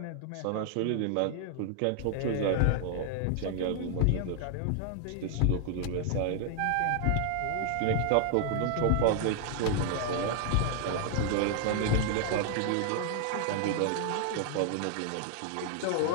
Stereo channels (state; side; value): different; both; correlation 0.00